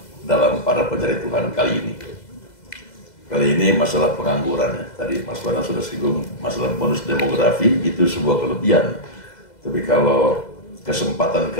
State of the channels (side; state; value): right; late; 2.0 ms